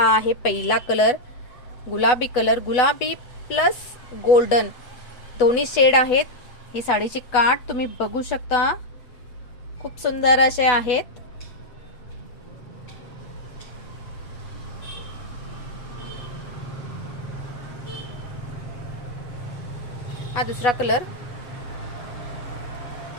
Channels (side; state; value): right; late; 8.1 ms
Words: आहे पहिला कलर, गुलाबी कलर, गुलाबी प्लस गोल्डन दोन्ही शेड आहेत। ही साडीची काठ तुम्ही बघू शकता, खूप सुंदर असे आहेत। हा दुसरा कलर,